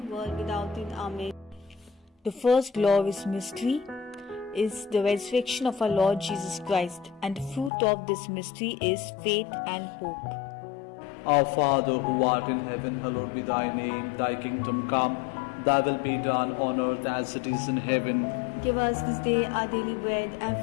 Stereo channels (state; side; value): drops out; right; at 7.7 s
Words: without end. Amen. The first glorious mystery is the resurrection of our Lord Jesus Christ, and the fruit of this mystery is faith and hope. Our Father, who art in heaven, hallowed be thy name. Thy kingdom come, thy will be done on earth as it is in heaven. Give us this day our daily bread, and